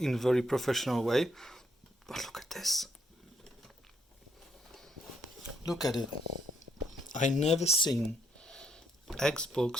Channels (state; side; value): normal; both; correlation 0.72